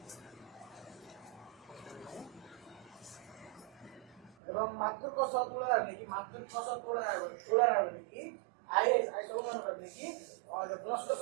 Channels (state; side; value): drops out; left; at 4.4 s